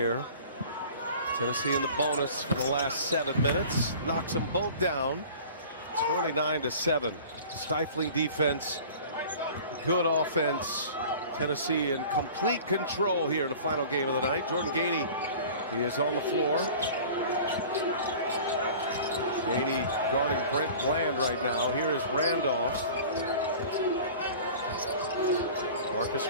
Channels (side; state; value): both; inverted; correlation -0.43